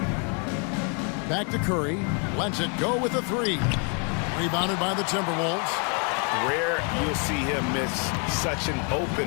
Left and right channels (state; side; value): quieter; right; 37.0 dB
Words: Back to Curry. Lets it go with a three. Rebounded by the Timberwolves. Rare you'll see him miss such an